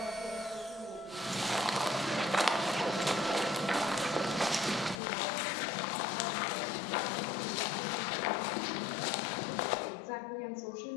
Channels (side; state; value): right; drops out; at 5.0 s